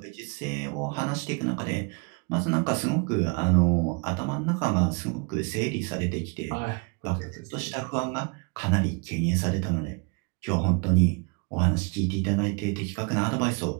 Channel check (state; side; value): quieter; left; 32.3 dB